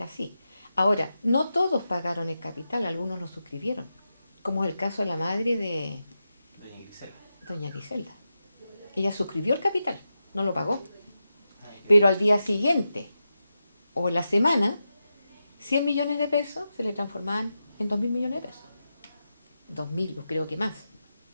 así. Ahora, no todos pagaron el capital, algunos lo suscribieron, como es el caso de la madre de Doña Grisela. doña Griselda. Ella suscribió el capital, no lo pagó. Ah, ya. Pero al día siguiente o en la semana, 100 millones de pesos se le transformaban en 2.000 millones de pesos. 2.000, yo creo que más,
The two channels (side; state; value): both; inverted; correlation -0.90